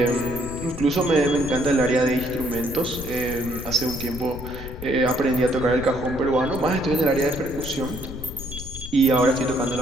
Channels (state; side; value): noise; left; rumble, 11 dB below the sound